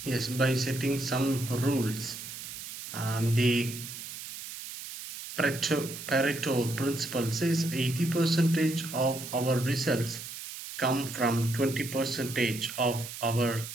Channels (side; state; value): right; noise; hiss, 10 dB below the sound